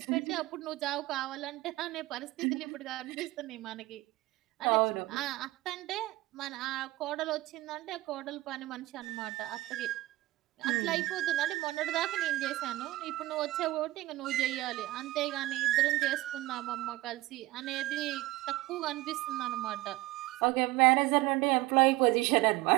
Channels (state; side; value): quieter; left; 18.5 dB